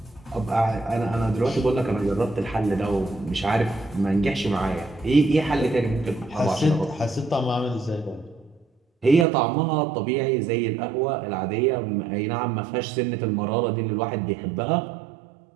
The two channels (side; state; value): left; drops out; at 9.2 s